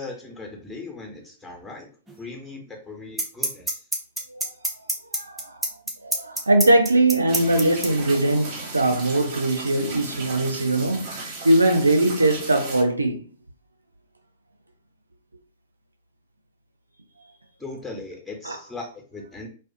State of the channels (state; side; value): inverted; both; correlation -0.74